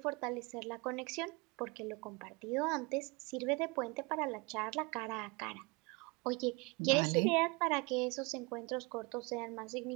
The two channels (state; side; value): quieter; left; 27.9 dB